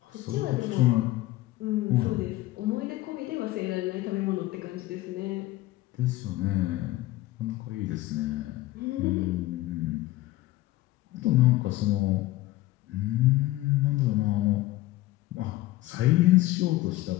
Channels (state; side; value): quieter; right; 17.3 dB